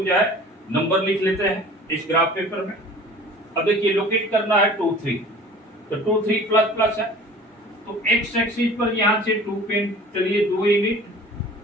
जो है नंबर लिख लेते हैं इस ग्राफ पेपर में। अब देखिए लोकेट करना है 2 3, तो 2 3 प्लस प्लस है, तो एक्स एक्सिस पर यहाँ से 2 पेन चलिए 2 यूनिट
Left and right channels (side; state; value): both; normal; correlation 0.45